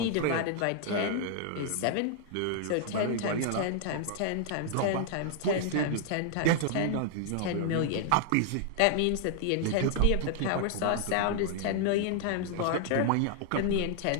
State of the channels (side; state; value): both; different; correlation 0.00